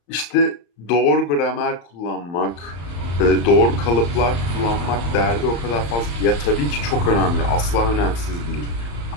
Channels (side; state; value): right; late; 35 ms